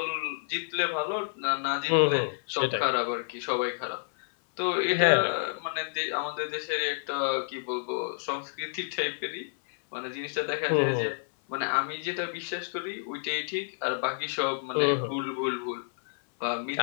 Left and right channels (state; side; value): silent; right; 58 dB below the other